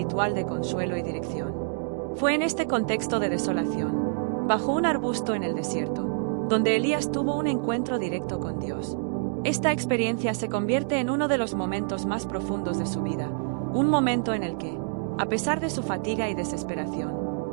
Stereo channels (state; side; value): silent; left; digital silence